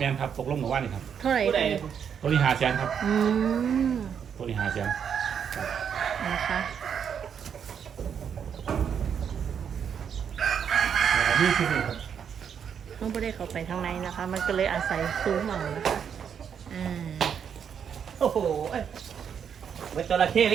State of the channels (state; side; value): quieter; left; 7.7 dB